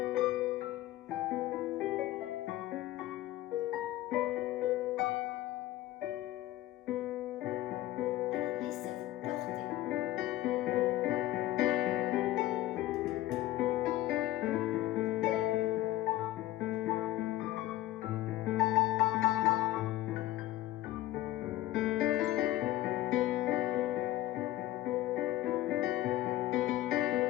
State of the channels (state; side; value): quieter; right; 15.3 dB